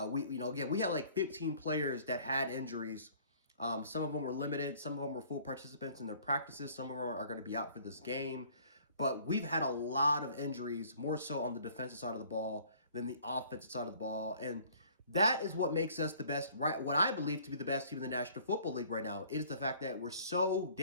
we had like 15 players that had injuries. Some of them were limited. Some of them were full participants in their practices. Some of them are going to be out for this game. But we've had a lot of injuries, more so on the defensive side of the ball than the offensive side of the ball. And that is what makes us the best, right? What I believe to be the best team in the National Football League right now. It is the fact that we're so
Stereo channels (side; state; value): both; inverted; correlation -0.55